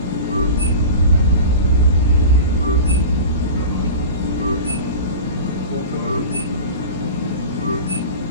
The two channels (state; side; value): inverted; both; correlation -0.32